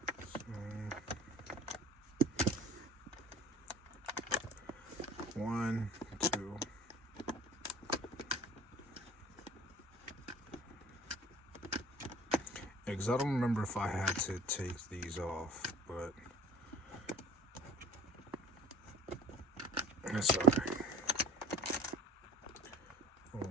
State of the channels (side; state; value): both; normal; correlation 0.47